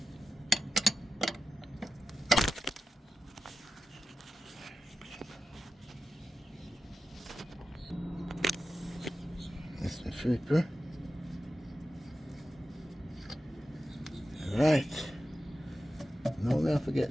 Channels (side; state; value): both; normal; correlation 0.92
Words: That's the flipper. Right. Now we have to